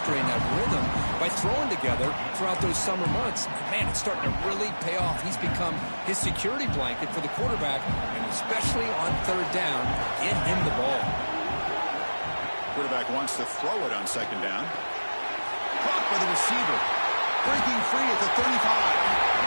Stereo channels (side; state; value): both; inverted; correlation -1.00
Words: and that rhythm by throwing together throughout those summer months. And man, it's starting to really pay off. He's become his security blanket for the quarterback, and especially on third down, get him the ball. Quarterback wants to throw it on second down. Caught by the receiver. Breaking free at the 35.